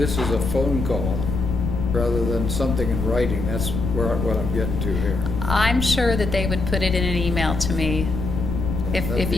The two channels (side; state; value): left; noise; rumble, 3 dB below the sound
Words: is a phone call rather than something in writing, that's what I'm getting to here. I'm sure that they would put it in an email to me. That'd If be